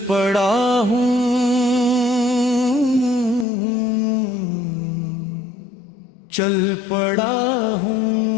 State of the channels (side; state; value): right; drops out; at 3.5 s